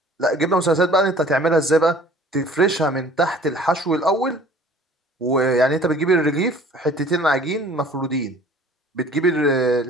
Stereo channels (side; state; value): both; normal; correlation 0.50